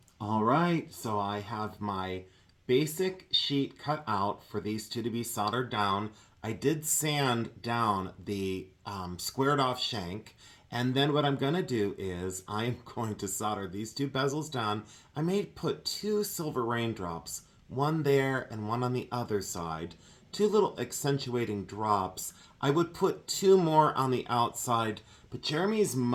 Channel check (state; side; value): identical; both; correlation 1.00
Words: All right, so I have my basic sheet cut out for these two to be soldered down. I did sand down the squared off shank. And then what I'm going to do is I'm going to solder these two bezels down. I may put two silver raindrops, one there and one on the other side. Two little accentuating drops. I would put two more on the outside, but Jeremy's